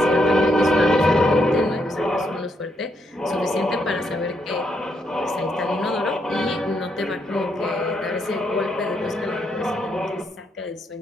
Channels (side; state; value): both; normal; correlation 0.77